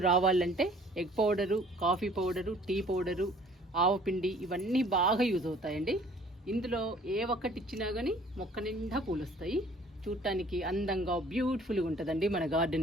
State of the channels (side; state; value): both; normal; correlation 0.54